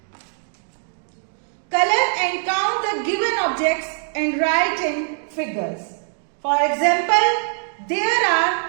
Color and count the given objects and write in figures. For example, there are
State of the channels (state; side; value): silent; left; 57 dB below the other